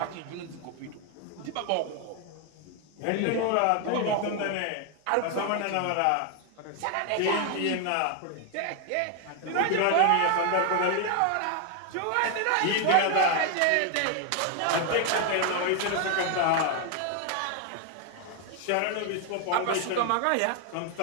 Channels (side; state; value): both; different; correlation 0.01